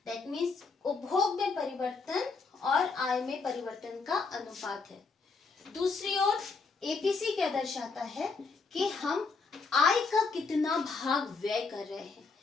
That means उपभोग में परिवर्तन और आय में परिवर्तन का अनुपात है। दूसरी ओर एपीसी क्या दर्शाता है कि हम आय का कितना भाग व्यय कर रहे हैं।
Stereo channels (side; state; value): right; quieter; 4.5 dB